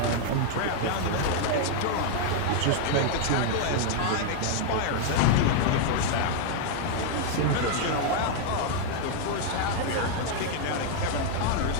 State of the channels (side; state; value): both; different; correlation 0.00